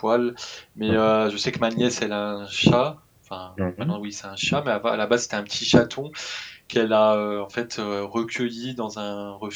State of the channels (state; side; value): identical; both; correlation 1.00